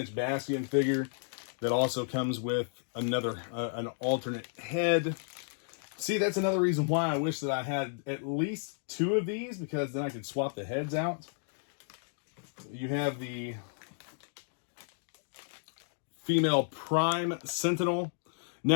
Bastion figure that also comes with another an alternate head. See, that's another reason why I wish that I had at least 2 of these, because then I could swap the heads out. You have the female Prime Sentinel.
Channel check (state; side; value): silent; right; digital silence